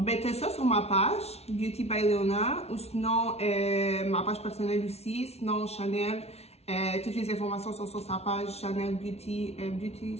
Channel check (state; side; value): late; right; 0.31 ms